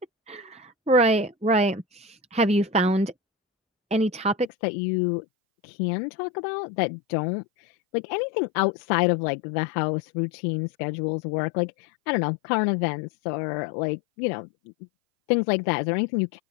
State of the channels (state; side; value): drops out; right; at 4.5 s